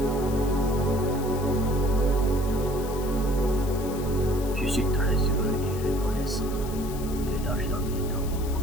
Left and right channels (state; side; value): noise; left; hiss, 15 dB below the sound